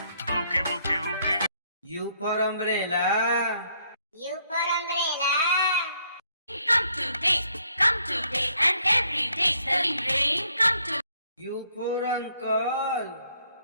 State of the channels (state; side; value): inverted; both; correlation -0.69